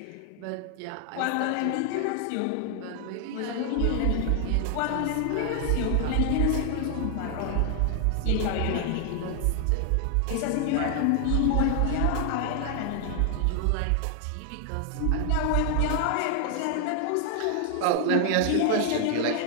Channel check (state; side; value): different; both; correlation 0.00